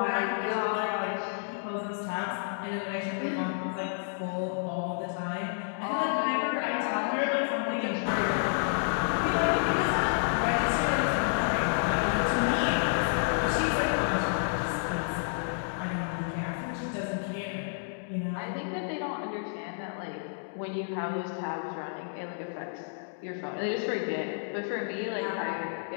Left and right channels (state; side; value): silent; right; digital silence